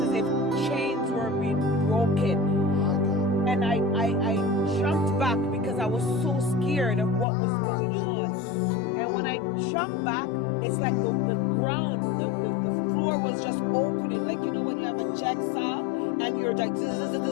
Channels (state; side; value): drops out; right; at 7.2 s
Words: as if chains were being broken. And I jumped back because I was so scared of what was going on. And when I jumped back, it's like the ground, the floor was just opening. Like, you know, when you have a jigsaw and you're like,